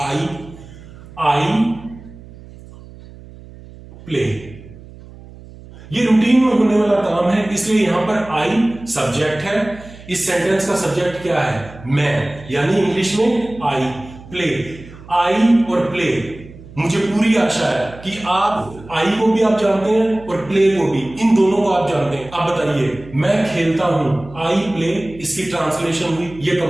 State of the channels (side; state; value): right; noise; hum, 19 dB below the sound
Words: play. ये रूटीन में होने वाला काम है, इसलिए यहां पर आई सब्जेक्ट है। इस सेंटेंस का सब्जेक्ट क्या है? मैं, यानी इंग्लिश में आई प्ले। आई और प्ले, मुझे पूरी आशा है कि आप आई को भी आप जानते हैं और प्ले को भी, इन दोनों को आप जानते हैं। अब बताइए, मैं खेलता हूं, आई प्ले, इसकी ट्रांसलेशन हुई, ये